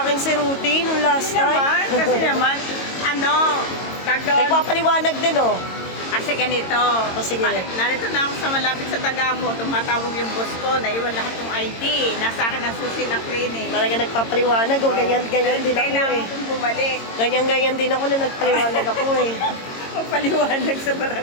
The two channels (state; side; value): late; right; 22 ms